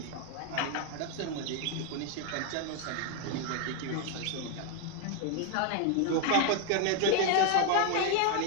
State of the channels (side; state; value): both; different; correlation 0.01